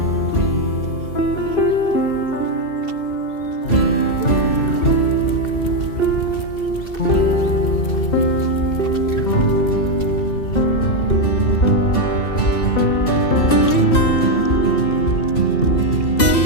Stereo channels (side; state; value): right; late; 2.7 ms